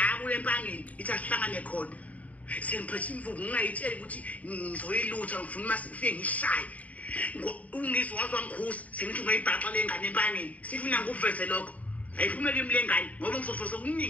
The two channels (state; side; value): late; right; 0.070 ms